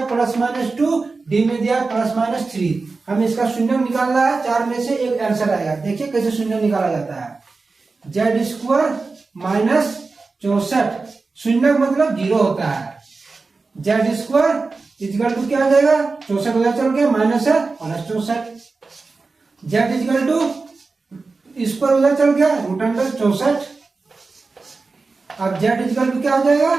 +-2, डी में दिया है +-3। हमें इसका शून्य निकालना है। 4 में से एक आंसर आएगा। देखिए कैसे शून्य निकाला जाता है। जेड स्क्वायर माइनस 64, शून्य मतलब 0 होता है। जेड स्क्वायर इक्वल टू क्या आ जाएगा? 64 उधर चल के माइनस है +64। जेड इक्वल टू स्क्वायर उधर चल गया √64। अब जेड इक्वल टू क्या हो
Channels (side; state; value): left; quieter; 4.0 dB